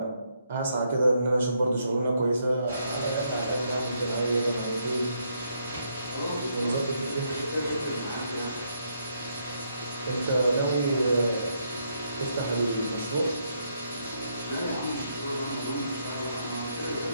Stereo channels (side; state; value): both; inverted; correlation -0.75